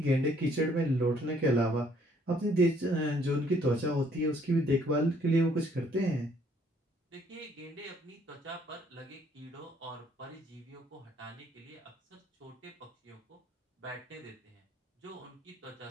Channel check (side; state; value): both; normal; correlation 0.64